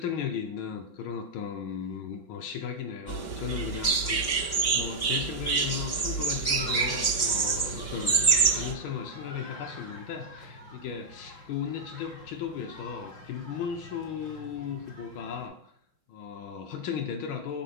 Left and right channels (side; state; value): right; late; 5.2 ms